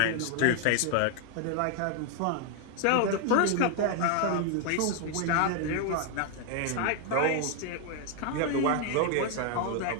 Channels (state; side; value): different; both; correlation 0.00